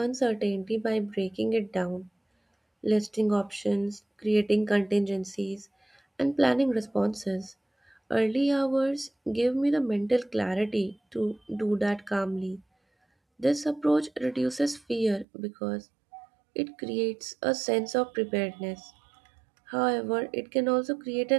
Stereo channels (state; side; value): drops out; left; at 15.2 s